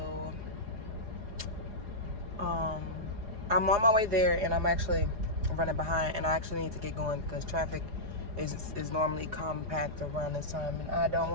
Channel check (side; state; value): left; late; 4.8 ms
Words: on my way there, and I'm actually running behind, and I actually need to get going because traffic is normally compact around this time, and I don't